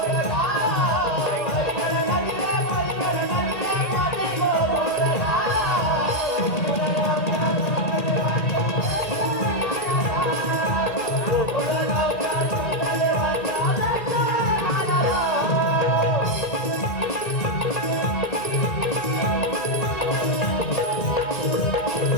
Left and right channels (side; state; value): right; late; 1.9 ms